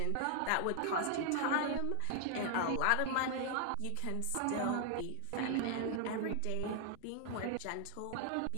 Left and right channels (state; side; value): different; both; correlation 0.00